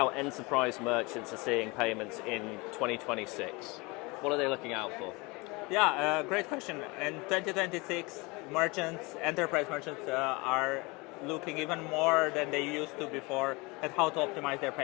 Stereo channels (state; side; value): quieter; right; 25.9 dB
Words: enterprise merchants are seeing payments in 2026. What are they looking out for? Yeah, great question. In 2026, enterprise merchants are looking even more than they used to before at how to optimize their